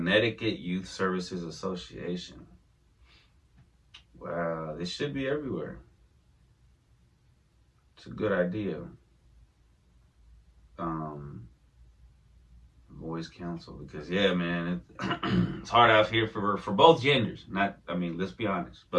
Youth Services Association. Wow, this should be everywhere. It's a good idea. Boys Council, because yeah, man, it's hard out here for both genders. Let's be honest,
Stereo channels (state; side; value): identical; both; correlation 1.00